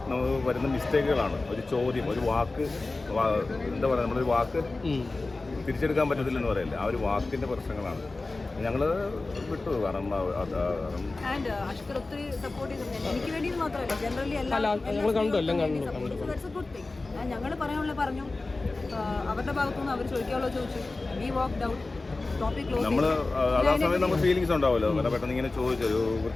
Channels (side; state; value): right; quieter; 3.3 dB